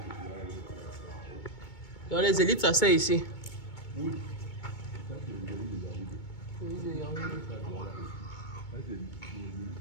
Donc les élites s'asseyent ici. oui. Ça, c'est les gens de Yaoundé.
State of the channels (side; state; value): right; late; 2.2 ms